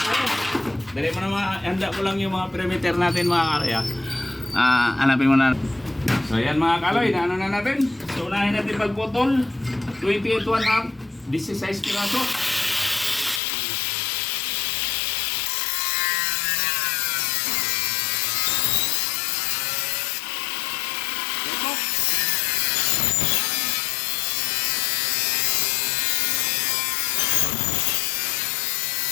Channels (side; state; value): right; drops out; at 13.4 s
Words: Dali mo na handa ko lang yung mga perimeter natin mga kaloy. Hanapin mo na. So yan mga kaloy, na ano na natin. So unahin natin pagputol. 28 1/2, 16 piraso.